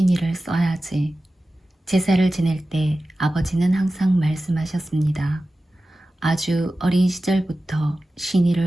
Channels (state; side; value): normal; both; correlation 0.95